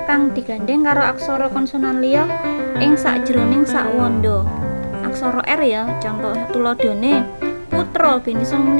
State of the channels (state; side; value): inverted; both; correlation -1.00